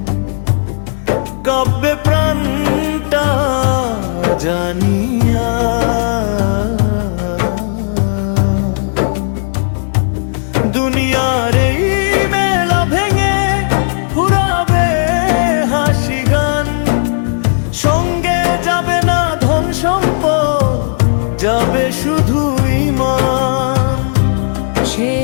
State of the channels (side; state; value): right; silent; digital silence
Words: কাব্যে প্রাণটা জানিয়া। দুনিয়ার এই মেলা ভেঙে ফুরাবে হাসি গান। সঙ্গে যাবে না ধন সম্পদ, যাবে শুধু ঈমান।